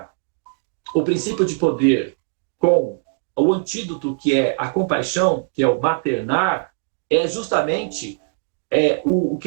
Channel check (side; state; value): left; silent; digital silence